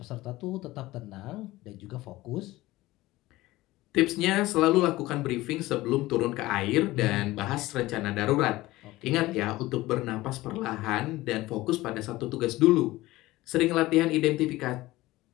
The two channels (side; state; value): right; quieter; 18.2 dB